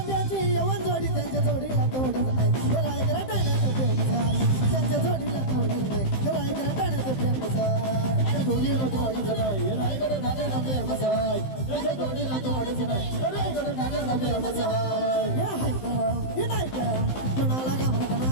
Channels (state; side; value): late; right; 15 ms